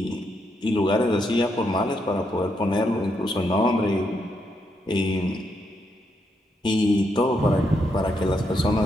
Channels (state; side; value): normal; both; correlation 0.79